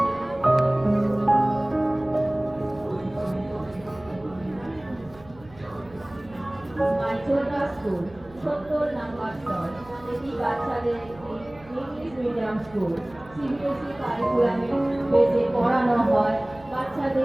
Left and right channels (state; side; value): noise; right; hum, 23 dB below the sound